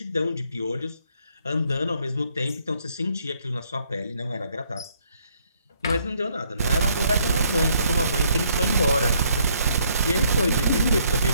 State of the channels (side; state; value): both; inverted; correlation -0.68